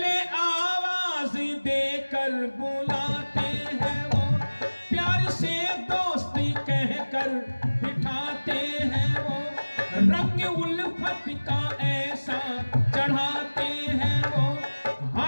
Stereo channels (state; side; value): inverted; both; correlation -1.00